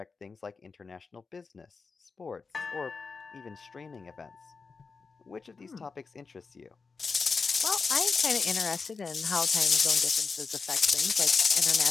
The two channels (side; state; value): right; quieter; 4.7 dB